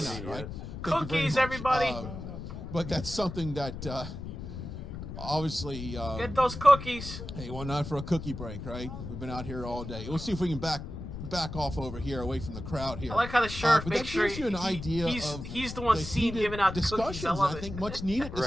why not, right? Cookies, everybody. But that's something that obviously get those cookies. Hey, why not for a cookie break, right? We've been out here all day. We'll see if we can back off over here, away from the crowd here. I like how the sheriff makes sure you an idea he's the one seen giving out the cookies. I love it. I think much needed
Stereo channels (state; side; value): noise; left; rumble, 8 dB below the sound